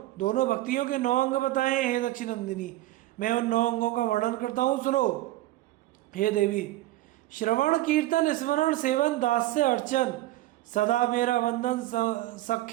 दोनों भक्तियों के 9 अंग बताए हैं। हे दक्षिणनंदिनी, मैं उन 9 अंगों का वर्णन करता हूँ, सुनो। हे देवी, श्रवण कीर्तन स्मरण सेवन दास्य अर्चन, सदा मेरा वंदन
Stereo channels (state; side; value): quieter; left; 16.2 dB